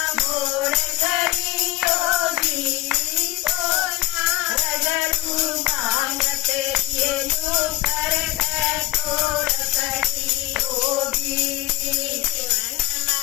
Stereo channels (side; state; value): right; quieter; 16.6 dB